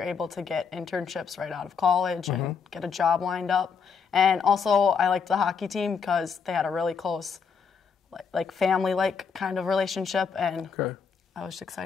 able to get internships right out of college and get a job lined up. And also I liked the hockey team because they had a really close, like family-like kind of relationship, and I was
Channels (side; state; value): right; quieter; 6.0 dB